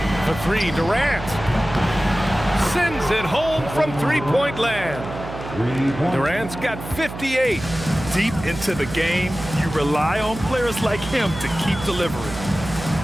For 3, Durant. Sends it home from three-point land. Durant's got 58. Deep into the game, you rely on players like him to keep delivering.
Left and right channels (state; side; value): noise; right; hum, 10 dB below the sound